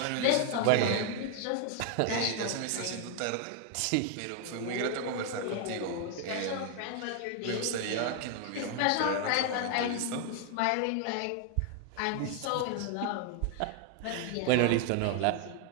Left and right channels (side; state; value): both; different; correlation 0.00